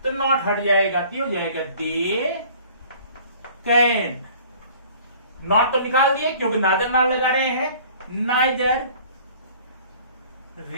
तो नॉट हट जाएगा, क्यों हो जाएगा, दे कैन। नॉट तो निकाल दिए क्योंकि नाइदर नॉट लगा रहे हैं, नाइदर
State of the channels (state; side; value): inverted; both; correlation -0.50